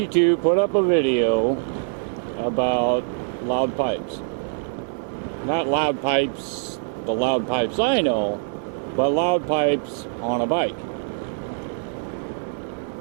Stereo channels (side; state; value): left; silent; 55 dB below the other